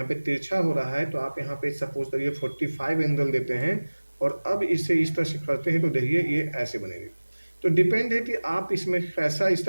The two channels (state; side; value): inverted; both; correlation -1.00